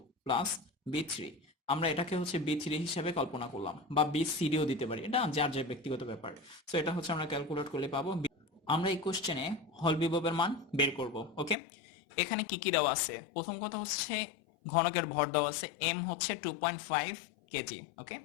plus B3। আমরা এটাকে হচ্ছে B3 হিসেবে কল্পনা করলাম, বা BCDও দিতে পারি, এটা যার যে ব্যক্তিগত ব্যাপার। সো এটা হচ্ছে আমরা ক্যালকুলেট করলে পাবো। আমরা এই কোশ্চেনে হল বিভবের মান বের করব, ওকে। এখানে কি কি দেওয়া আছে, প্রথম কথা হচ্ছে ঘনকের ভর দেওয়া আছে, এম হচ্ছে 2.5 কেজি, ওকে।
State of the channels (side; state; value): right; drops out; at 11.6 s